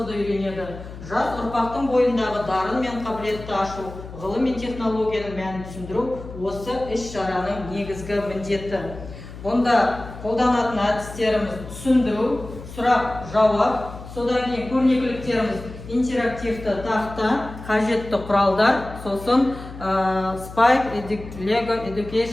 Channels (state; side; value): noise; left; hum, 13 dB below the sound